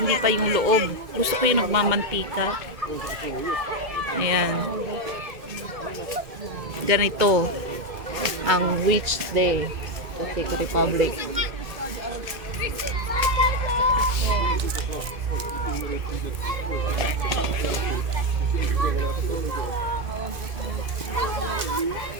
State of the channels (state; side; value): late; left; 2.1 ms